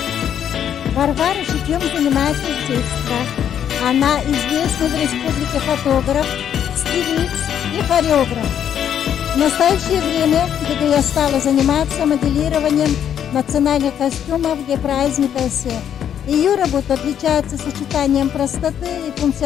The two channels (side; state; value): right; quieter; 9.3 dB